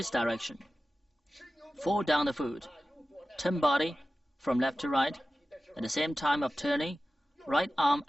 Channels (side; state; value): both; normal; correlation 0.95